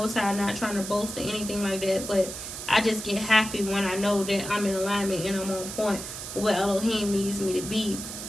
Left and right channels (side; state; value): right; noise; hiss, 8 dB below the sound